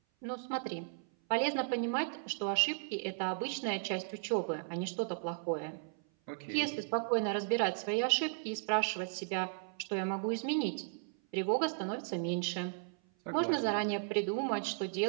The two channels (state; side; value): silent; left; 54 dB below the other